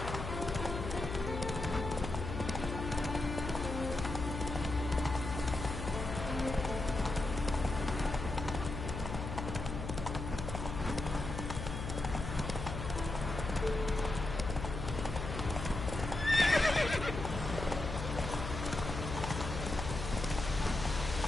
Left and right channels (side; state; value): left; noise; hum, 5 dB below the sound